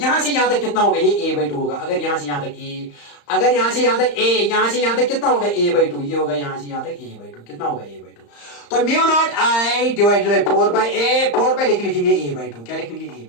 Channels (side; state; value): right; late; 35 ms